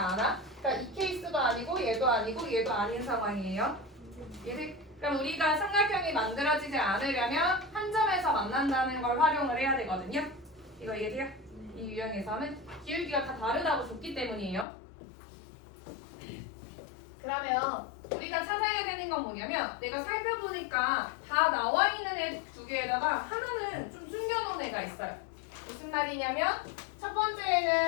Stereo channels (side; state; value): right; drops out; at 14.7 s